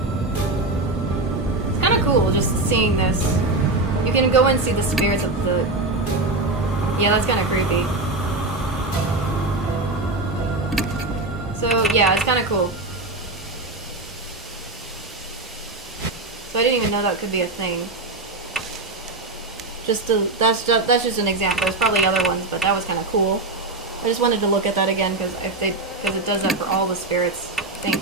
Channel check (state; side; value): quieter; left; 3.0 dB